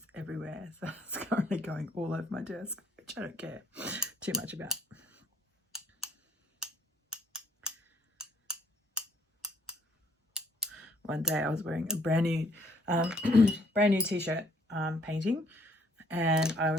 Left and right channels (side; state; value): both; normal; correlation 0.64